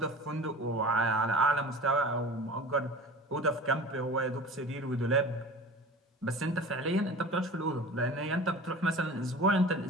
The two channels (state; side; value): normal; both; correlation 0.38